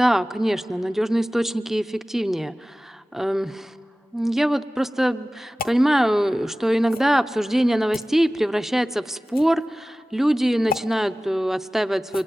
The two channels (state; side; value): normal; both; correlation 0.97